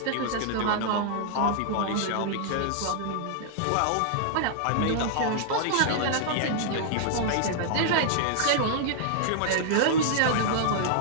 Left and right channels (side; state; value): both; different; correlation -0.01